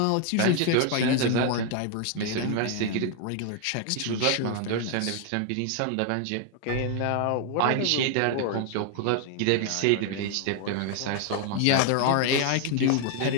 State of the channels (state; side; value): different; both; correlation 0.00